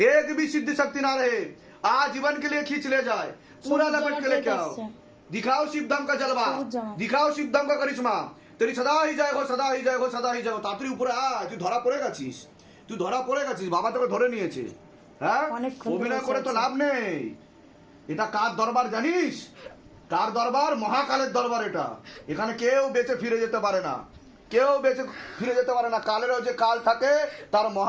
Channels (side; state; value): both; identical; correlation 1.00